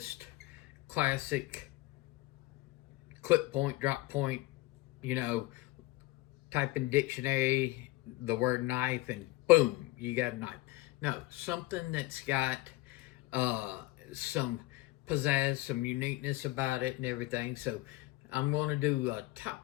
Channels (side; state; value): right; quieter; 18.7 dB